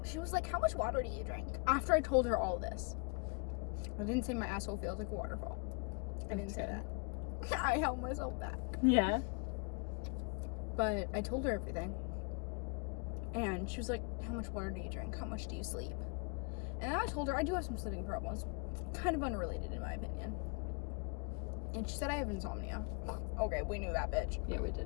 she was like, how much water do you drink? After I told her all this. I didn't say my asshole feels like a waterfall. I didn't say that. I held myself back. Yeah. But I told her everything. And she was like, how much water do you drink? How much do you sleep? And then I told her I do have some sleeping problems. Kind of unrelated, in my opinion. And she said I have insomnia. Okay, we knew that, bitch. Yeah, we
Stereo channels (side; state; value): right; quieter; 33.3 dB